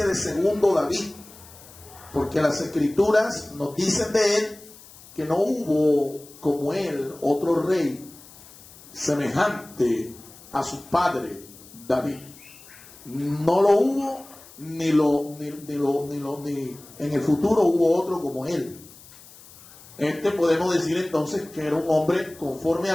de segundo David, porque las escrituras nos dicen de él que no hubo como él otro rey semejante a su padre David. No lo hubo, ni en el futuro hubo otro como él. Podemos decir entonces que era un hombre conforme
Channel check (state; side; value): noise; left; hiss, 21 dB below the sound